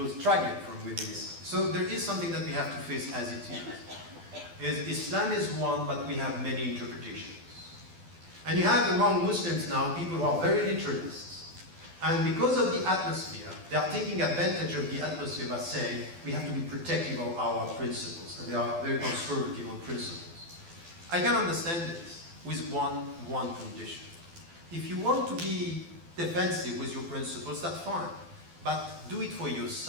struggling from within Islam. So there is something that we have to face as it is. Islam is one, but we have many interpretations. And you have among Muslims now people who are very literalists. And because of the atmosphere, they are taking advantage of the atmosphere by saying we have to be protective of our principles, and they are very conservative on principles. I can understand this with one condition. If you want to be defensive with your principles, that's fine. But do it for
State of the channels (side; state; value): left; late; 12 ms